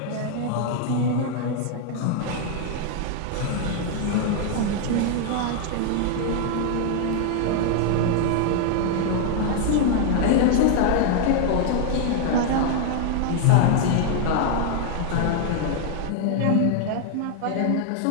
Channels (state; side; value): different; both; correlation 0.00